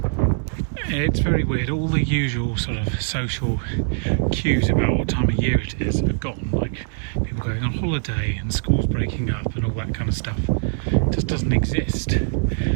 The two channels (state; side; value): silent; left; digital silence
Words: It's very weird. All the usual sort of social cues about what time of year it is are gone. Like people going on holiday and schools breaking up and all that kind of stuff. It just doesn't exist.